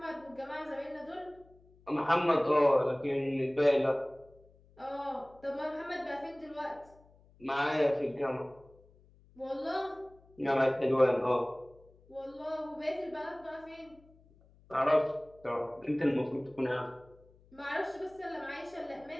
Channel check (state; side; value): noise; left; hum, 28 dB below the sound